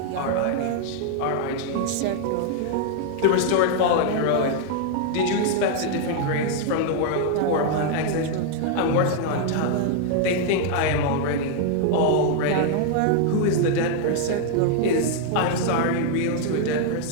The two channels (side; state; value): both; different; correlation 0.00